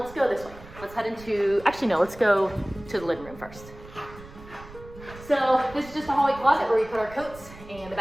go this way. Let's head into, actually no, let's go to the living room first. So this is just a hallway closet where we put our coats and the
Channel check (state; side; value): noise; right; rumble, 18 dB below the sound